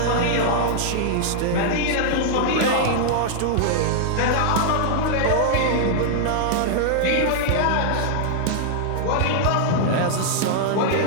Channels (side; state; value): both; different; correlation -0.01